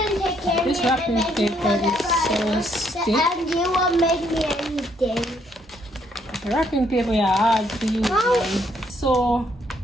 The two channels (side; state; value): both; normal; correlation 0.70